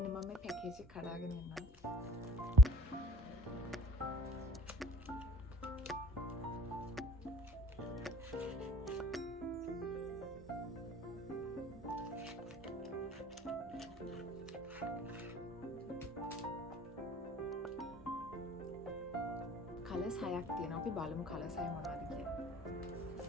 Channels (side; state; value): both; normal; correlation 0.52